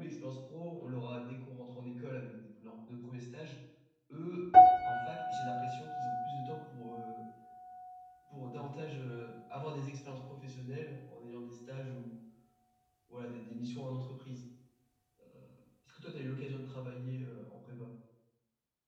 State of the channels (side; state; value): both; identical; correlation 1.00